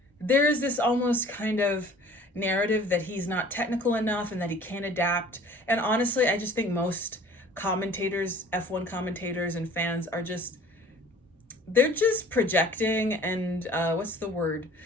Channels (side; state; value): both; normal; correlation 0.49